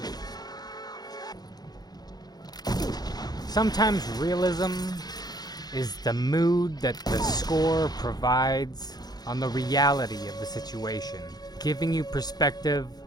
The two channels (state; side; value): late; right; 0.19 ms